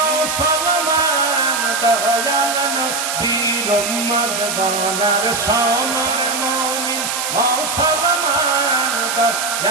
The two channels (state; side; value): noise; right; hiss, 3 dB below the sound